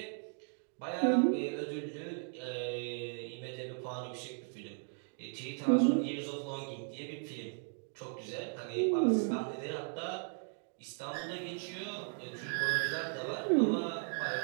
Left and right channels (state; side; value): silent; left; 53 dB below the other